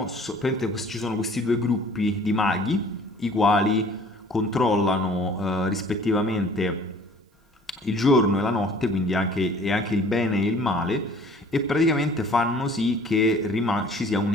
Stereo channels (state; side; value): normal; both; correlation 0.51